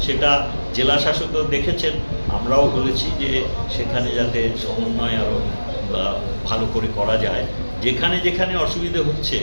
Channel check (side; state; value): both; inverted; correlation -1.00